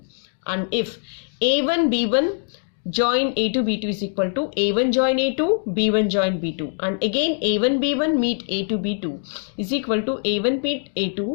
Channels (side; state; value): right; silent; 64 dB below the other